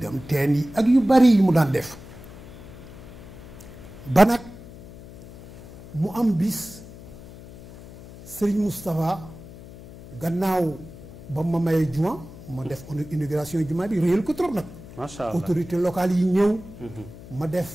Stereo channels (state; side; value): noise; left; hum, 17 dB below the sound